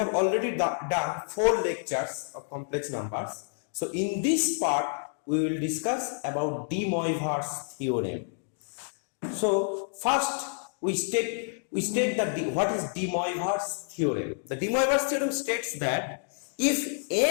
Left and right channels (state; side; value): silent; right; 59 dB below the other